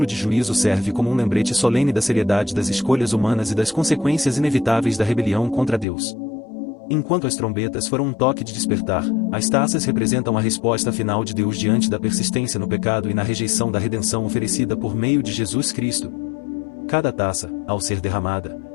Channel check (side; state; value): right; drops out; at 5.9 s